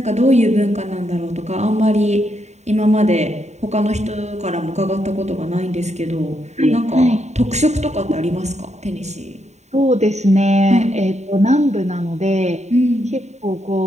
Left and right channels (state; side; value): late; left; 0.33 ms